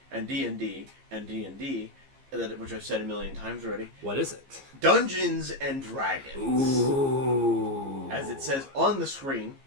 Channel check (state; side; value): late; left; 15 ms